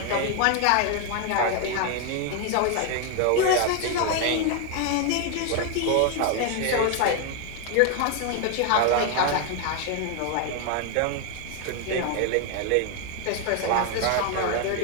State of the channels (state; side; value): different; both; correlation 0.01